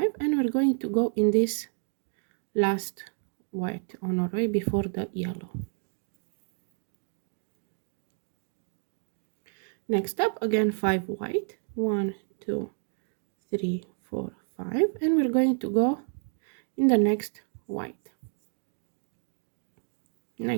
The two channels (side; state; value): left; silent; 57 dB below the other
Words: and we're going to go in this last white on our way before the yellow. Next up, again 5 white, 1 2 3 4 5, and we're going to go in the next white.